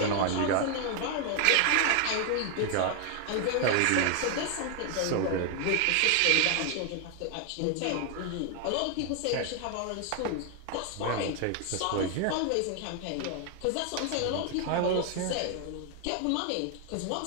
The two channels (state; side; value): different; both; correlation 0.01